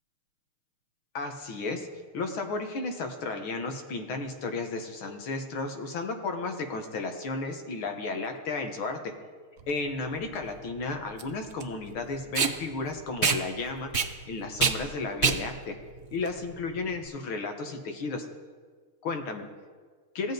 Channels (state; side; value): late; right; 6.4 ms